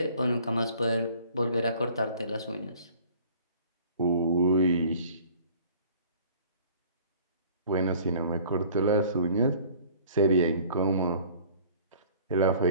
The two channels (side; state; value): both; inverted; correlation -0.50